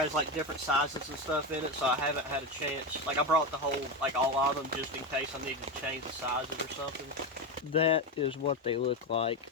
like different sizes and stuff in it, so I haven't had a chance. Like I brought the whole, like all of them, just in case I needed to change the sizes or something. That is what they look like.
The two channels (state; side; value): normal; both; correlation 0.14